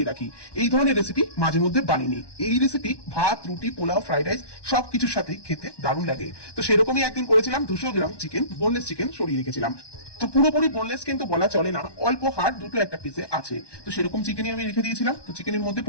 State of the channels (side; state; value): right; late; 1.2 ms